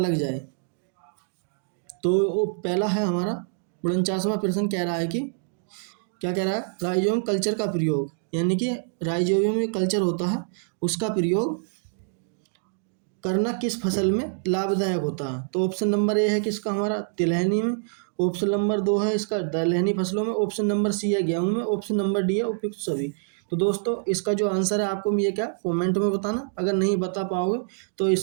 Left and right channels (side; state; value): left; silent; digital silence